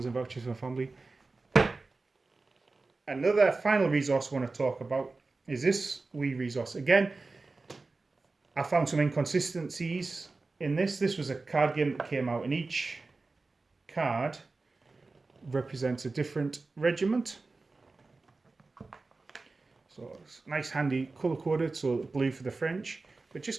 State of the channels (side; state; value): left; quieter; 3.7 dB